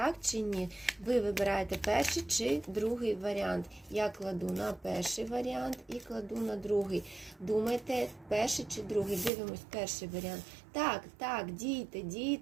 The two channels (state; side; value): drops out; left; at 9.3 s